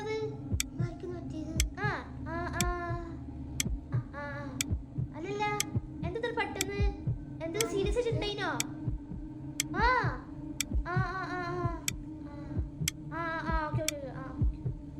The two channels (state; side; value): identical; both; correlation 1.00